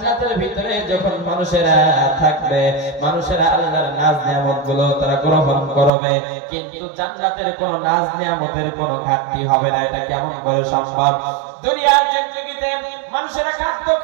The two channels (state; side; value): drops out; left; at 5.9 s